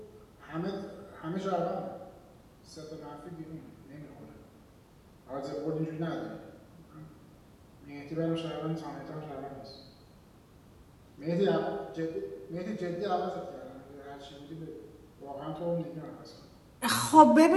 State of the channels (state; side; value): identical; both; correlation 1.00